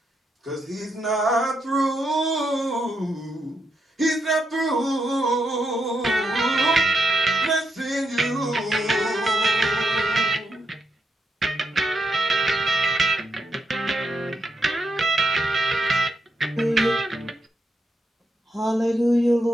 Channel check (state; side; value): normal; both; correlation 0.82